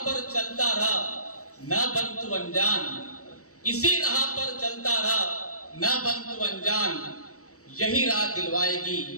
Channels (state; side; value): late; right; 0.65 ms